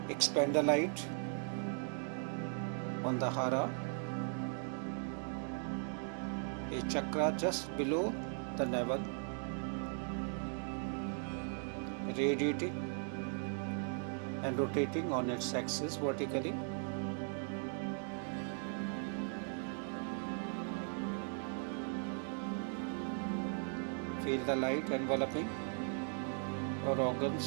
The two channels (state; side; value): silent; left; 52 dB below the other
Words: Expand the light on the hara, a chakra just below the navel, radiating and rotating on its axis vertically. Feel the light enveloping your